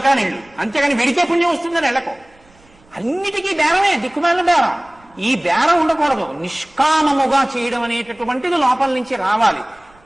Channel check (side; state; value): right; noise; rumble, 30 dB below the sound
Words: నేను. అంతేగాని వెడితే పుణ్యం వస్తుందని వెళ్ళకు. అన్నిటికీ బేరమే, దిక్కుమాలిన బేరం. ఈ బేరం ఉండకూడదు. నిష్కామముగా చేయడం అనేటటువంటిది లోపల నుంచి రావాలి.